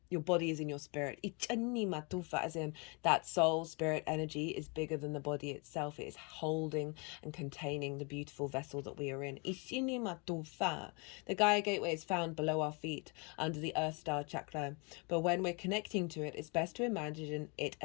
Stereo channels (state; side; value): quieter; right; 32.0 dB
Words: your body is in your spirit. As in that soul, spirit energy is bigger than the body itself. It is holding and containing the beautiful vessel that we are in. The Gaia Gateway is found below our feet, under the Earth Star chakra. But when we're connecting to it, it's best to imagine it